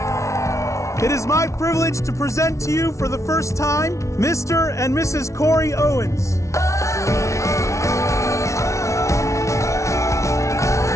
It is my privilege to present to you for the first time Mr. and Mrs. Cory Owens.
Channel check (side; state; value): right; late; 0.14 ms